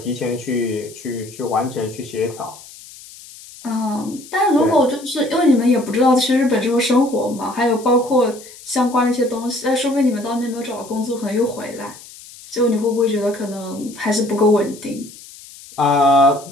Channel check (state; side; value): noise; left; hiss, 19 dB below the sound